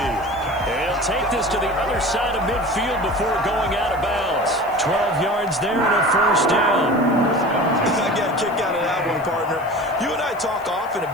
And he'll take this to the other side of midfield before going out of bounds. 12 yards there and a first down. I got a kick out of that one, partner. You and I talk often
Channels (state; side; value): noise; left; hiss, 25 dB below the sound